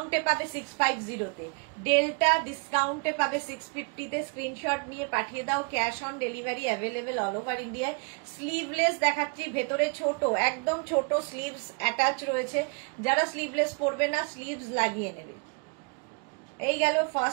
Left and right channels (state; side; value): quieter; left; 36.2 dB